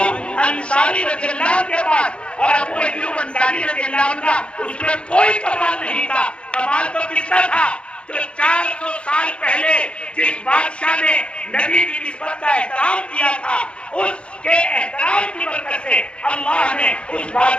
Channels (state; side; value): late; right; 0.057 ms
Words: अंसारी रज़ियल्लाहु के पास। और अबू अय्यूब अंसारी रज़ियल्लाहु का उसमें कोई कमाल नहीं था। कमाल तो किसका था? जो 400 साल पहले जिस बादशाह ने नबी की निस्बत का एहतराम किया था, उसके एहतराम की बरकत से अल्लाह ने उस